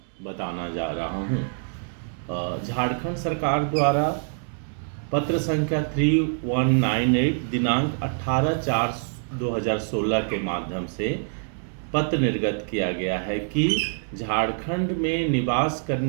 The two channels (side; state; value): left; silent; 62 dB below the other